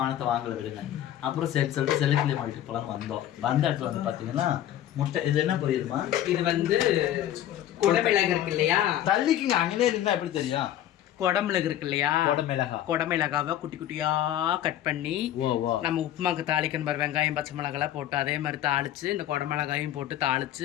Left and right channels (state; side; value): quieter; right; 12.0 dB